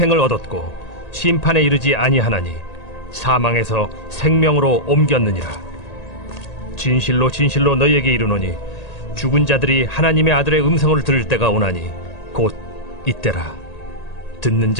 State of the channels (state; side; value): late; right; 1.8 ms